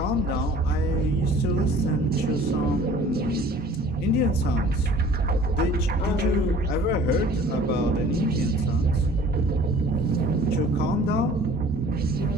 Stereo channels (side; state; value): both; normal; correlation 0.49